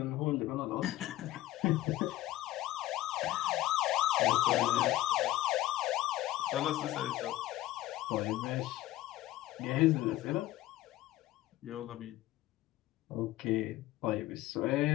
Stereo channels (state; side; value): quieter; right; 15.6 dB